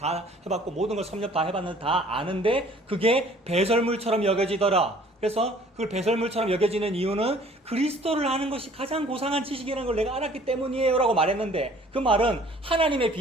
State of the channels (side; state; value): both; normal; correlation 0.54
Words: 해봤고, 모든 걸 섭렵 다 해봤는데 다 아는데, 그게 배설물처럼 여겨지더라. 그래서 그걸 배설물처럼 여겨지는 이유는 그리스도를 아는 것이 가장 고상한 지식이라는 걸 내가 알았기 때문이에요 라고 말했는데, 그 말은 하나님의